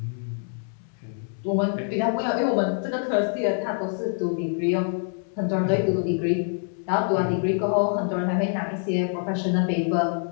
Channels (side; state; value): right; silent; 57 dB below the other